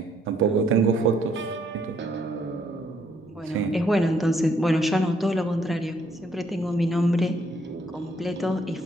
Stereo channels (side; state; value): both; normal; correlation 0.69